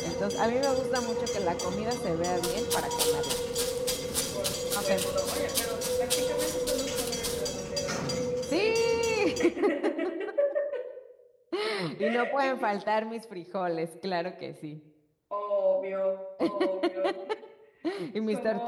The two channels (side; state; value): both; identical; correlation 1.00